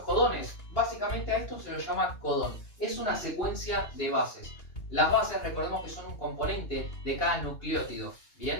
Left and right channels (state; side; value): late; right; 2.8 ms